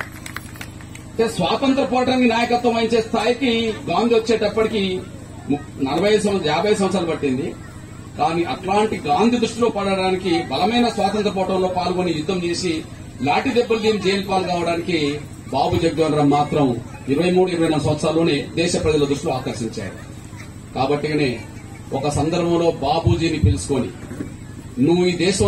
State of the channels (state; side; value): identical; both; correlation 1.00